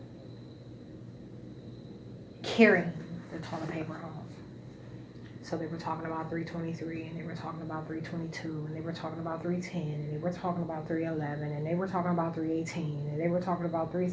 carrying the toilet paper home. So they were talking about 323, and they were talking about 322, and they were talking about 310, and they were talking about 311, and they were talking about 318, and they were talking about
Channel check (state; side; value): identical; both; correlation 1.00